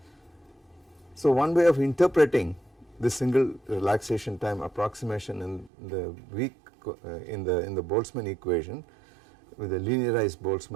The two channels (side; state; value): left; drops out; at 5.7 s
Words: So one way of interpreting the single relaxation time approximation in the weak in the Boltzmann equation with a linearized